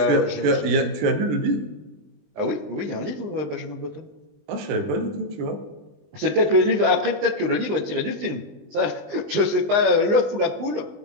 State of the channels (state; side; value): late; left; 20 ms